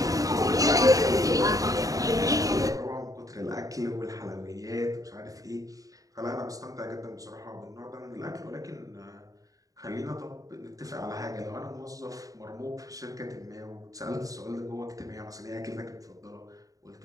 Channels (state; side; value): late; left; 0.17 ms